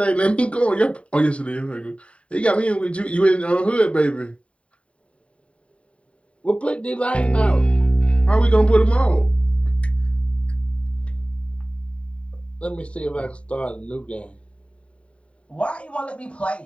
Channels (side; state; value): right; late; 0.062 ms